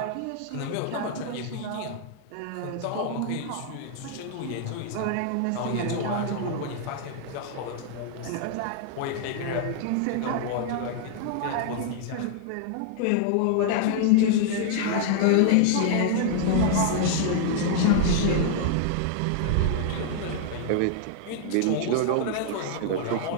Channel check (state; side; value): different; both; correlation 0.00